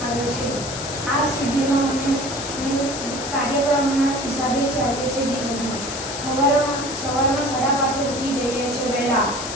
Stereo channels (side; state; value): left; noise; hiss, 8 dB below the sound